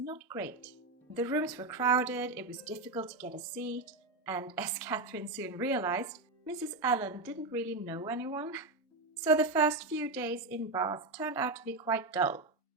great. The rooms were crowded, it was difficult to get a seat, and as Catherine soon realized, Mrs. Allen didn't really know anyone. So the first few days in Bath turned out to be quite dull,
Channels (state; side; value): quieter; left; 3.2 dB